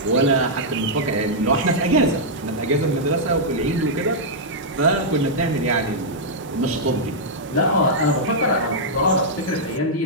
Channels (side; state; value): both; normal; correlation -0.08